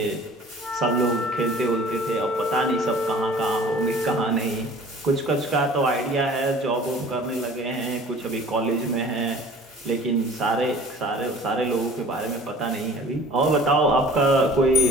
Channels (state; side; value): normal; both; correlation 0.47